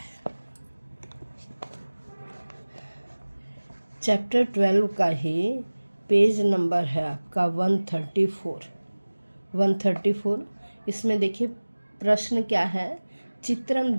चैप्टर 12 का ही पेज नंबर है आपका 134। इसमें देखिए प्रश्न क्या है। चित्रम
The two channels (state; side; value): inverted; both; correlation -1.00